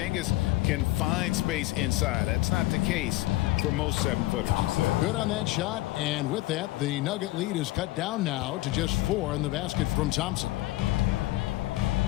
can find space inside. That's not the case for most 7-footers. Good on that shot, and with that, the Nugget lead is cut down now to just 4 in the basket from Thompson.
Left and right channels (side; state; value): right; quieter; 18.1 dB